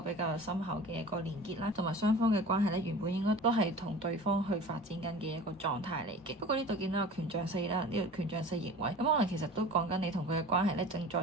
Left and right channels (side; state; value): both; normal; correlation 0.39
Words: 較深厚嘅一個連結啦，同埋雙方嘅關係咧原本應該都係同對方去發展緊嘅一個狀態嚟嘅。不過呢度見到有權杖四啦，呢個權杖四逆位，咁可能其實都講緊你同佢嘅關係咧正在